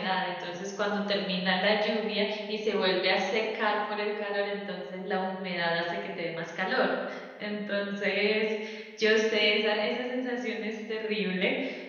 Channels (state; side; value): identical; both; correlation 1.00